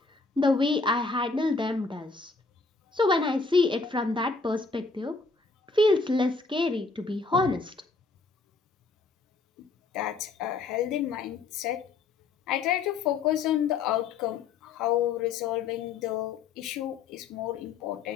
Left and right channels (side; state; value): right; quieter; 4.3 dB